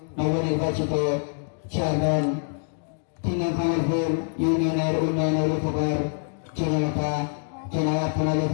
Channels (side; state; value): right; silent; digital silence